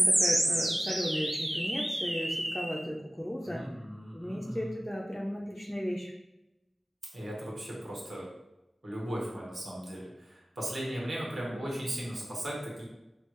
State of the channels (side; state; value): both; normal; correlation 0.95